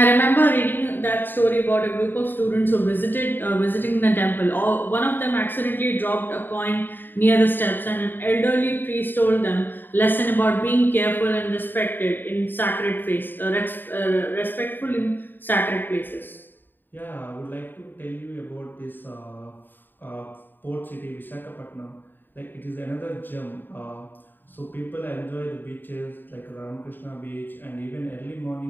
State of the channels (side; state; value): right; late; 0.093 ms